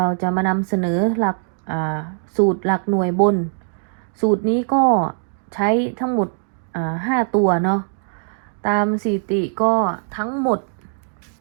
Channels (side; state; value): left; silent; digital silence